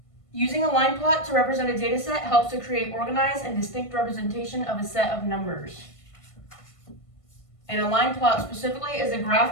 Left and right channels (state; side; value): late; right; 1.5 ms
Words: Using a line plot to represent a data set helps to create organized and distinct representation of a set of numbers. And a line plot specifically is a